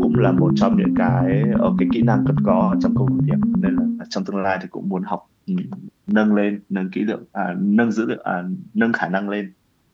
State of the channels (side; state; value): both; identical; correlation 1.00